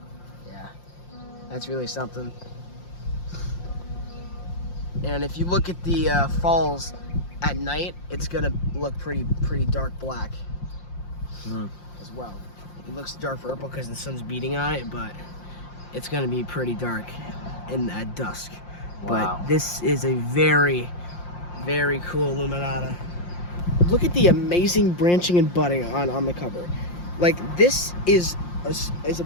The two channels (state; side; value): late; right; 5.7 ms